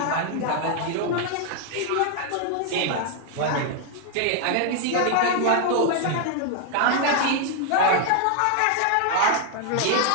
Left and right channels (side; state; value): both; different; correlation 0.00